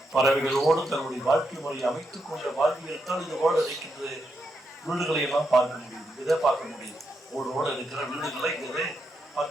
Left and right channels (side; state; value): both; normal; correlation 0.82